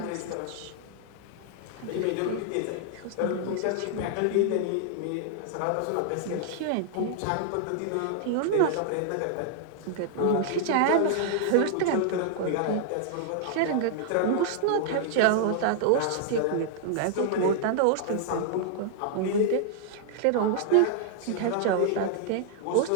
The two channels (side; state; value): both; different; correlation -0.01